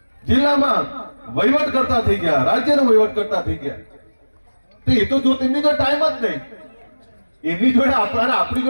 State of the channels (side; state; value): both; inverted; correlation -1.00